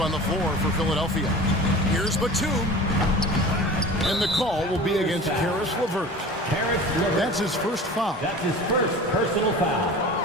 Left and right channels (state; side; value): normal; both; correlation 0.38